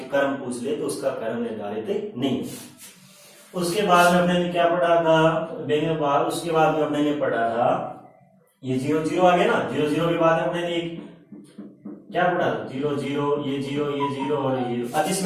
क्रम पूछ ले तो उसका क्रम निर्धारित नहीं। उसके बाद में अपने ने क्या पढ़ा था, उसके बाद में अपने ने पढ़ा था ये 0 0 आ गया ना, 0 0 के बाद अपने ने क्या पढ़ा था, 0 0 ये 0 ये 0 और ये 0 अदिश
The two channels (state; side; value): identical; both; correlation 1.00